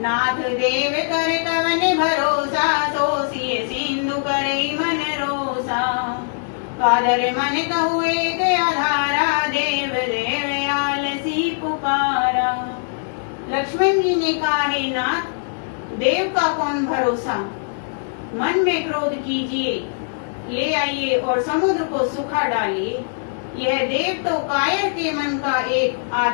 नाथ देव कर कवन भरोसा, सोसिए सिंधु करे मन रोसा। कादर मन कहु एक आधारा, देव देव आलसी पुकारा। लक्ष्मण जी ने कहा, हे नाथ, देव का कौन भरोसा। मन में क्रोध कीजिए, ले आइए और समुद्र को सुखा डालिए। यह देव तो कायर के मन का एक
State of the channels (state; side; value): silent; right; 64 dB below the other